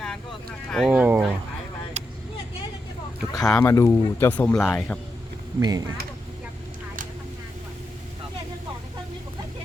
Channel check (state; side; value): normal; both; correlation 0.85